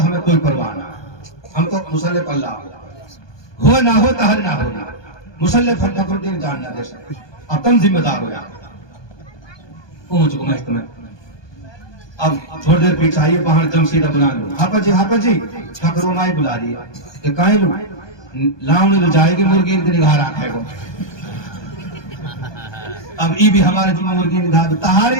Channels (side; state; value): right; late; 1.2 ms